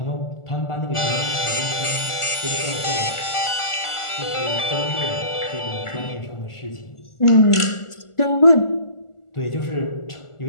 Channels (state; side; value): late; right; 1.4 ms